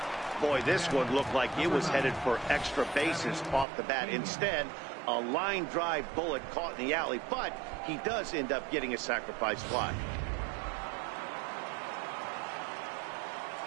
Boy, this one looked like it was headed for extra bases off the bat. Instead, a line drive bullet caught in the alley, but he does end up getting a sacrifice fly.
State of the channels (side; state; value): left; drops out; at 3.7 s